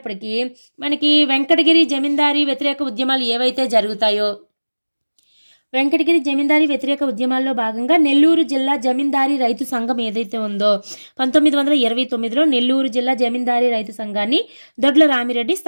మనకి వెంకటగిరి జమీందారీ వ్యతిరేక ఉద్యమాలు ఏవైతే జరుగుతాయో వెంకటగిరి జమీందారీ వ్యతిరేక ఉద్యమాల్లో భాగంగా నెల్లూరు జిల్లా జమీందారీ రైతు సంఘం ఏదైతే ఉందో 1929లో నెల్లూరు జిల్లా జమీందారీ రైతు సంఘాన్ని దొడ్ల రామిరెడ్డి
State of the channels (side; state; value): both; inverted; correlation -1.00